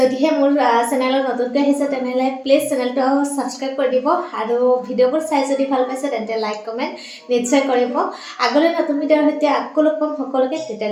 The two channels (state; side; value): identical; both; correlation 1.00